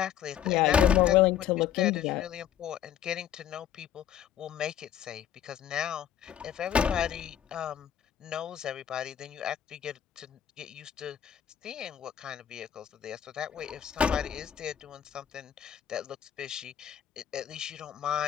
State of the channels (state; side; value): quieter; right; 9.9 dB